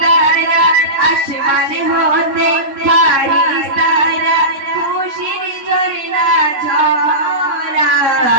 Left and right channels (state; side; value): late; left; 3.7 ms